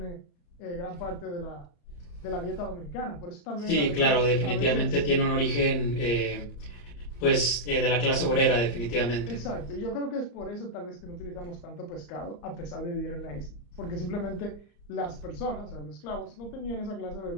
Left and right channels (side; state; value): right; late; 34 ms